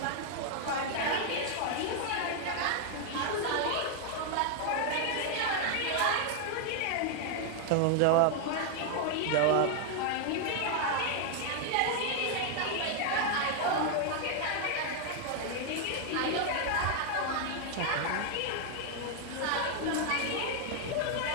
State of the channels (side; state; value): both; different; correlation 0.00